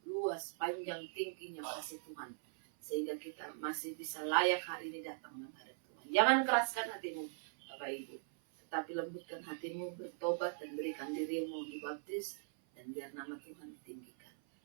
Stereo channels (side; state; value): left; silent; 51 dB below the other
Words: luas, panjang, tingginya kasih Tuhan, sehingga kita masih bisa layak hari ini datang menghadap Tuhan. Jangan keraskan hatimu, Bapak Ibu, tetapi lembutkan hatimu, bertobat dan berikan dirimu dibaptis, dan biar nama Tuhan ditinggikan.